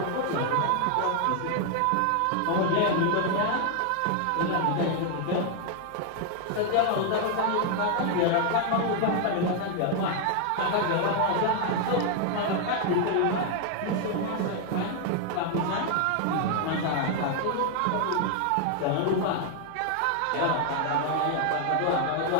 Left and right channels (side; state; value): both; different; correlation 0.00